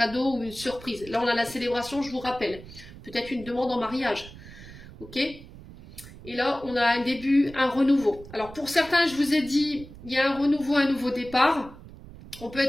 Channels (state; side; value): noise; right; rumble, 17 dB below the sound